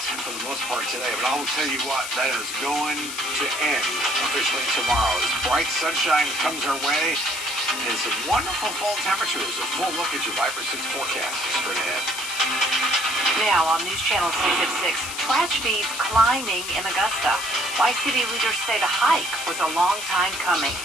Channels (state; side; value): noise; left; hiss, 7 dB below the sound